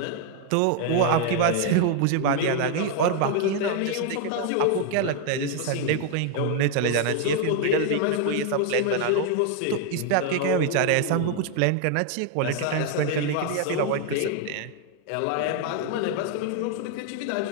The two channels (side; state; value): both; different; correlation 0.00